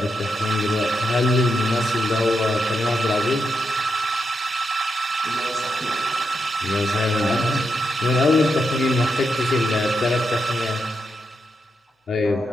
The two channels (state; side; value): normal; both; correlation 0.84